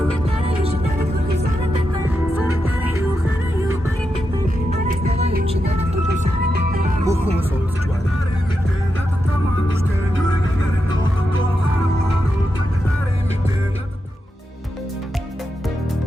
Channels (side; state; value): both; normal; correlation 0.87